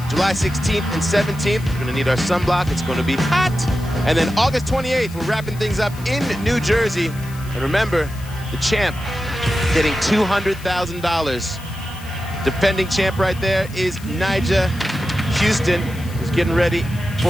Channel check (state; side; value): noise; left; hiss, 19 dB below the sound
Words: July 16th and 17th. We're going to need our sunblock. It's going to be hot. And then August 28th, we're wrapping things up in New Jersey. And remember, the champ getting $200,000. Defending champ right there is Nyjah Huston, who's getting ready